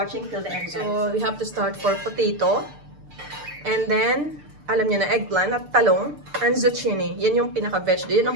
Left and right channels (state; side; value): late; left; 6.7 ms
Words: till the end, guys. So, we have to start for potato. And then, alam niyo na, eggplant at talong and zucchini. Yan yung pinaka-vegetable. Yan